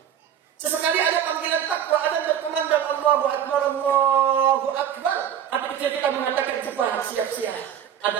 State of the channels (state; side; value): quieter; left; 9.5 dB